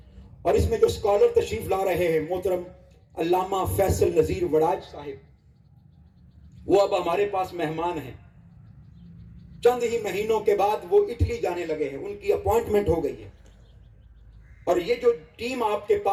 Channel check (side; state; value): both; identical; correlation 1.00